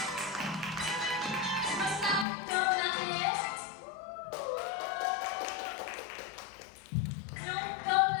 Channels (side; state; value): right; drops out; at 2.2 s